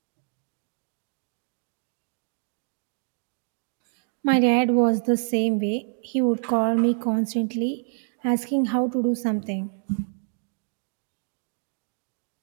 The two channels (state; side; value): silent; left; 60 dB below the other